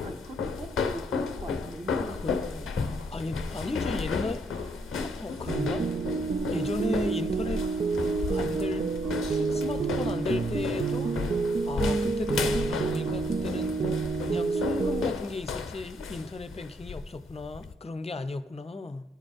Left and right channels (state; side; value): normal; both; correlation 0.72